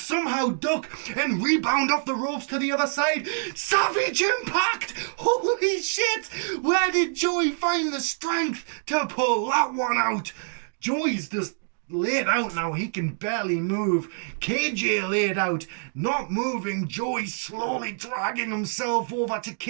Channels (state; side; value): silent; left; 61 dB below the other